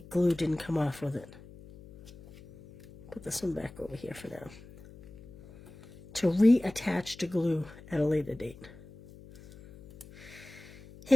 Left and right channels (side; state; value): left; noise; hum, 19 dB below the sound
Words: glue didn't come off with it. Put this one back over here for now, to reattach to glue at a later date.